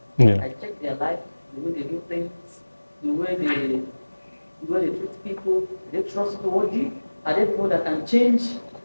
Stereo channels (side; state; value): both; inverted; correlation -1.00